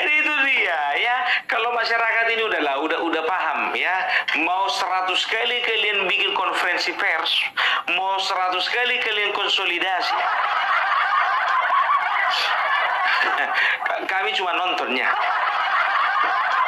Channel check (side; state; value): both; identical; correlation 1.00